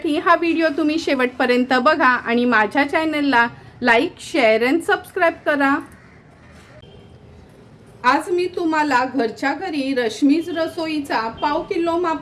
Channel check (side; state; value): both; identical; correlation 1.00